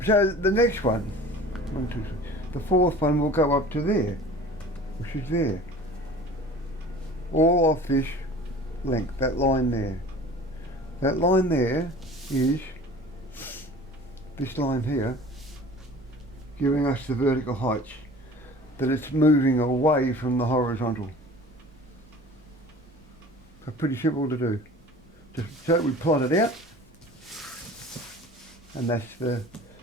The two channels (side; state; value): both; normal; correlation 0.43